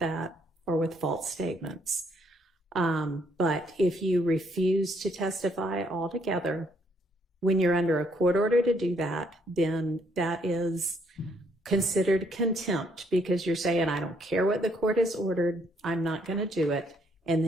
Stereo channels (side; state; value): both; normal; correlation 0.69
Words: or with false statements. But if you refuse to testify altogether, when you're under a court order to do that, then that is considered contempt because you're saying, I don't care what the court has ordered, I'm not going to do it, and